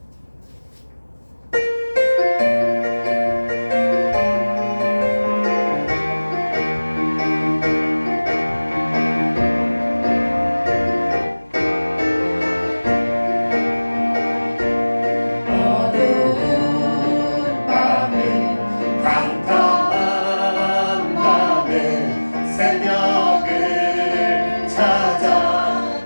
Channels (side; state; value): both; inverted; correlation -1.00